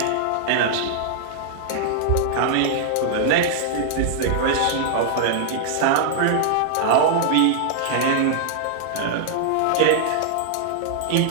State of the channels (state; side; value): different; both; correlation -0.01